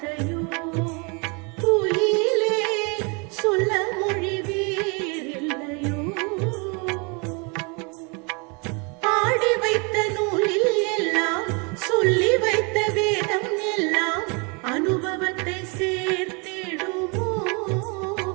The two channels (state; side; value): quieter; left; 32.2 dB